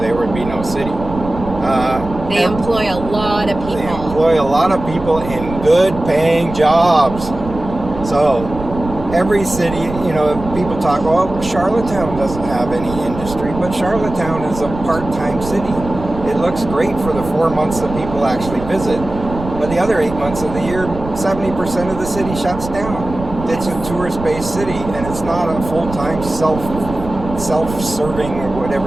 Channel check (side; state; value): right; noise; rumble, 10 dB below the sound